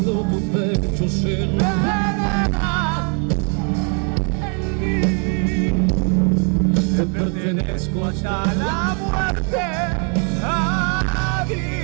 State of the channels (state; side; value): quieter; left; 39.6 dB